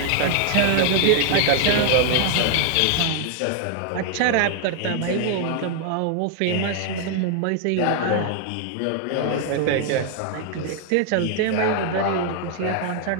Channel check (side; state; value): both; different; correlation 0.00